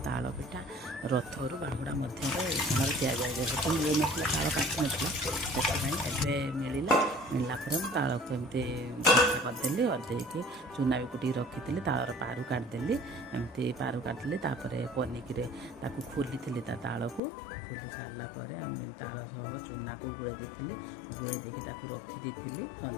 ताल पिठा रथरू बाहुड़ा मध्य इसाण दिया जाए जेहेतु मिल ना ताल काटी नाई मिलला मिलला ताल को एमती करदेली करदेकी चूना भी कुटी रखी तालर पारू काटदेली एमती पारू काटदेली पनिकी खोली थी ताल को खोली सारापर आम ताल सह चूना को गुड़े गुड़े देकी रखी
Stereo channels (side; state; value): right; drops out; at 17.2 s